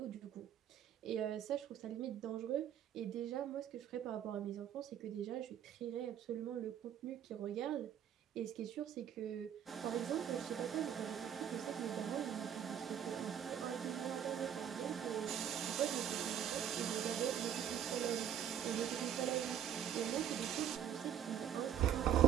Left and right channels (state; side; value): quieter; left; 9.6 dB